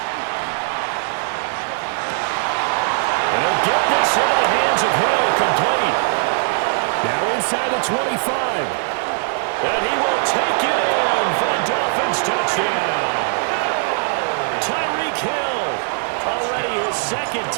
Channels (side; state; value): left; silent; 66 dB below the other